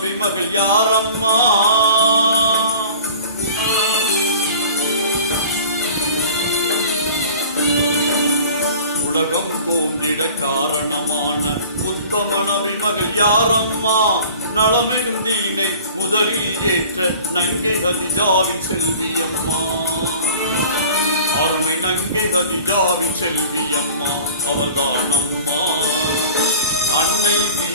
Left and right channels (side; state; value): both; inverted; correlation -0.44